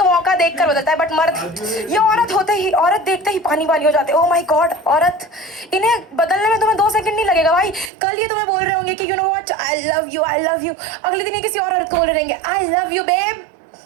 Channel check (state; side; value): drops out; left; at 7.9 s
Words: मौका देखकर बदलता है, बट मर्द, ये औरत होते ही, औरत देखते ही पानी पानी हो जाते। ओह माय गॉड, औरत, इन्हें बदलने में तुम्हें 2 सेकंड नहीं लगेगा भाई। कल ये तुम्हें बोल रहे होंगे कि you know what, I love you, I love you. अगले दिन ये किसी और औरत को बोल रहेंगे I love you babe.